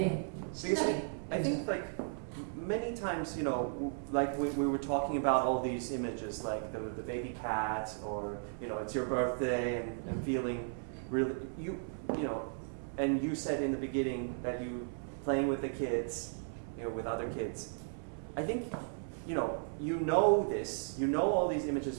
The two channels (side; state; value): left; silent; 54 dB below the other